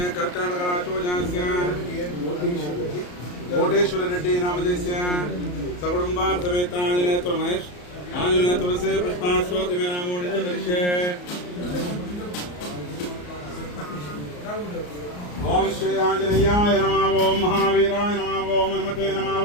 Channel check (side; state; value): right; late; 34 ms